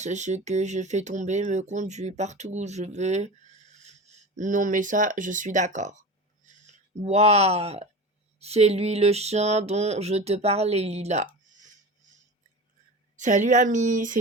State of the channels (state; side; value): normal; both; correlation 0.30